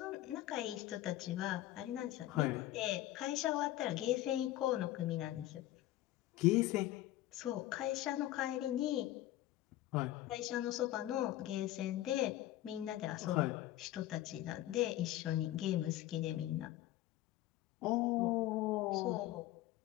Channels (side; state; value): right; quieter; 14.9 dB